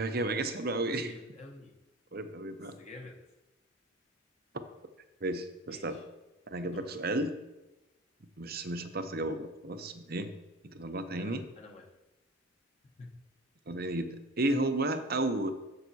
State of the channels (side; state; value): both; normal; correlation 0.37